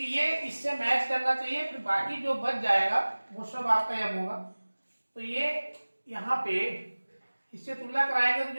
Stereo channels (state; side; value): inverted; both; correlation -1.00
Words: ये इससे मैच करना चाहिए, फिर बाकी जो बच जाएगा वो सब आपका m होगा। तो ये यहाँ पे इससे तुलना कराएंगे तो